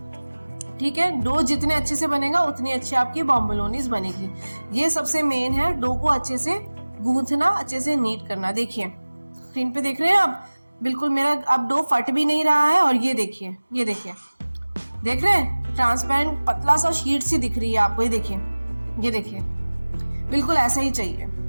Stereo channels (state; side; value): inverted; both; correlation -1.00